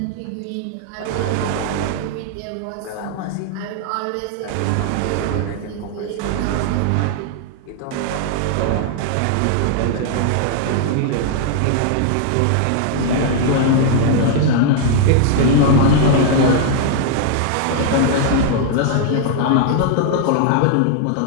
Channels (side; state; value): both; different; correlation -0.01